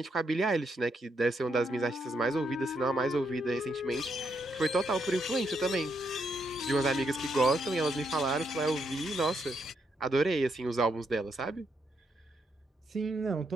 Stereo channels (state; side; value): normal; both; correlation 0.78